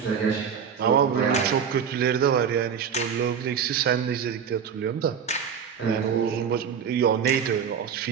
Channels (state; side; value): quieter; left; 7.3 dB